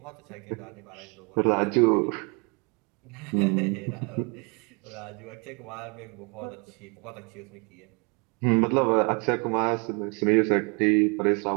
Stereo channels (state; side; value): quieter; left; 32.5 dB